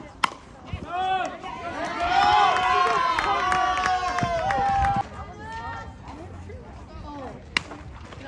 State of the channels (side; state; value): both; identical; correlation 1.00